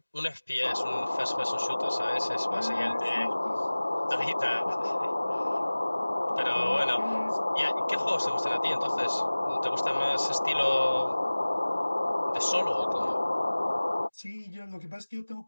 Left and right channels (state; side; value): inverted; both; correlation -1.00